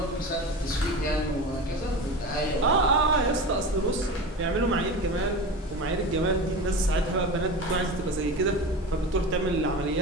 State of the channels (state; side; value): normal; both; correlation 0.29